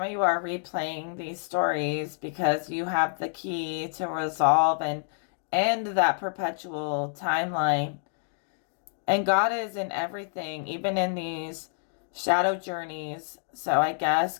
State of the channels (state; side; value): silent; right; digital silence